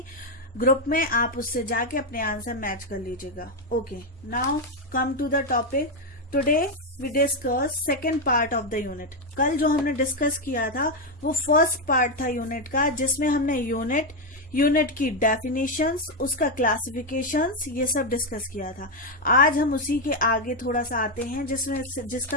ग्रुप में, आप उससे जाके अपने आंसर मैच कर लीजिएगा। Okay, now come to the topic. Today we discuss second part of the unit. कल जो हमने डिस्कस किया था वो फर्स्ट पार्ट था यूनिट का, जिसमें हमने यूनिट की डेफिनेशंस, उसका क्लासिफिकेशंस, ये सब डिस्कस किया था। आज हम उसी के आगे थोड़ा सा आते हैं,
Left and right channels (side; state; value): both; normal; correlation 0.05